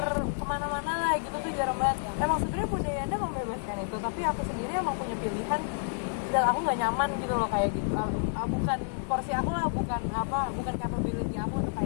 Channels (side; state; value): right; silent; 56 dB below the other